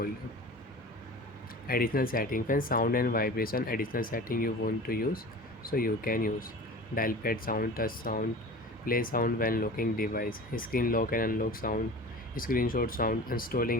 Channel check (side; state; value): both; normal; correlation 0.37